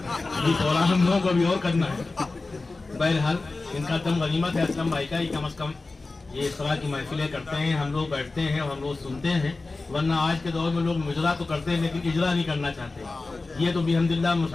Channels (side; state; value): right; quieter; 3.5 dB